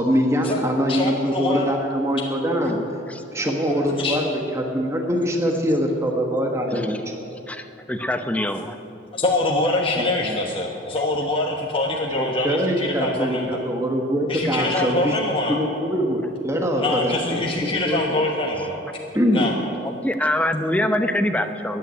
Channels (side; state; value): both; normal; correlation 0.51